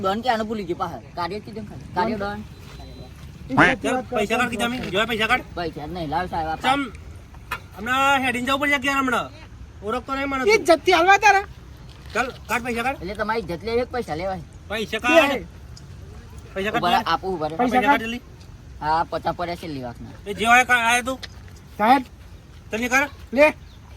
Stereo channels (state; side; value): identical; both; correlation 1.00